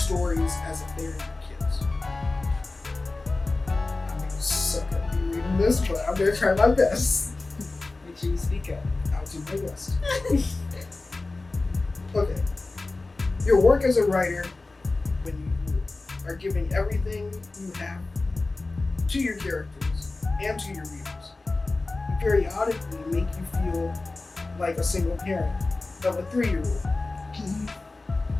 as if they're your kids. I'm gonna suck at me reading this, but I'm gonna try my best. Make sure you speak up. I'll do my best. Okay. Your work as a writer, when you are giving everything you have to your characters and to your readers, you periodically make you feel like a single parent of a 3-year-old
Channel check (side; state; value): right; quieter; 3.3 dB